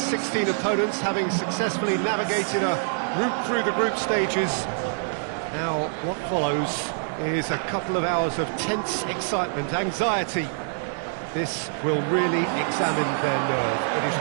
16 opponents, having successfully navigated a route through the group stages. Now, what follows is a couple of hours of tense excitement, anxiety. This will really examine their nerve. It is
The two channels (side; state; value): left; silent; 61 dB below the other